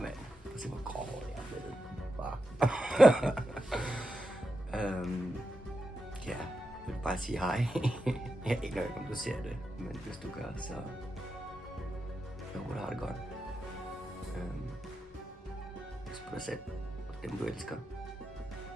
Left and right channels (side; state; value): both; normal; correlation 0.88